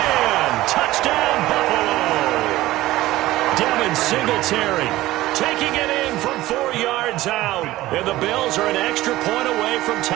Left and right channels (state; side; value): quieter; left; 16.7 dB